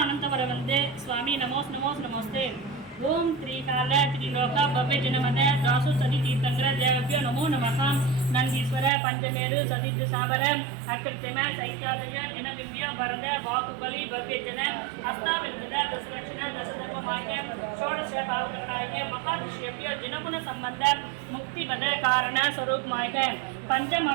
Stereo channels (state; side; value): drops out; left; at 8.9 s